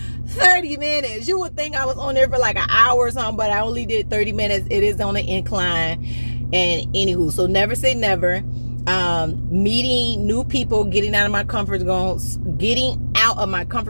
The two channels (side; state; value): both; inverted; correlation -1.00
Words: 30 minutes. You would think I was on there for like an hour or something, but I only did 30 minutes. It is on an incline. And anywho, so never say never. Meeting new people, getting out of my comfort zone,